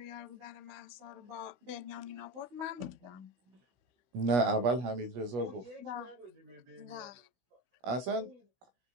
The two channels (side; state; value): left; late; 16 ms